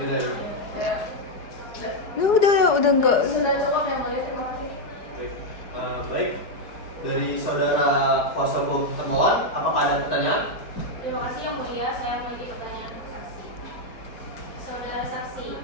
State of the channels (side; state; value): right; late; 4.8 ms